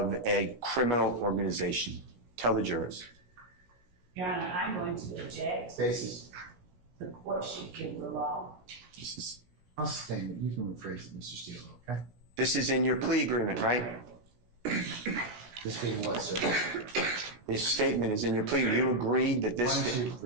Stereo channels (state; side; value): late; left; 17 ms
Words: a criminal organization? Tell the jurors. Your Honor, I'm going to object. Basis. The court should give the law. I'll sustain it. You can rephrase it, Mr. Steele, okay? This is in your plea agreement, right? This being what, sir? This statement is in your plea. You agreed that Why this, don't you